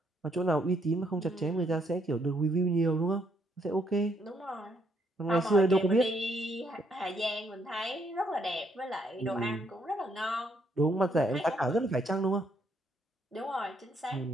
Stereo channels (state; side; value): normal; both; correlation 0.72